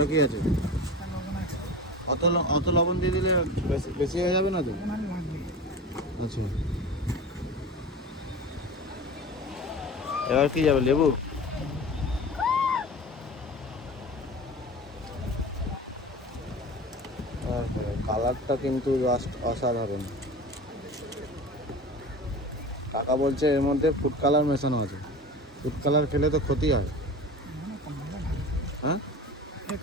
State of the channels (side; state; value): both; normal; correlation 0.34